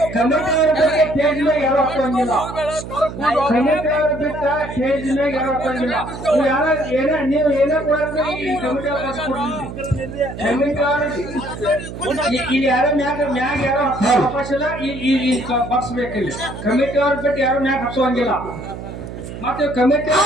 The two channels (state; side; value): noise; right; hum, 10 dB below the sound